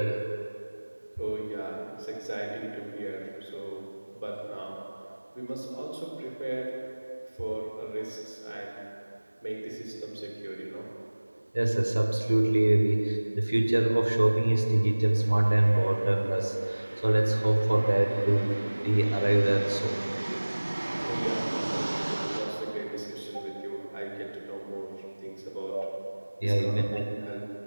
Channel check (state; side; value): inverted; both; correlation -1.00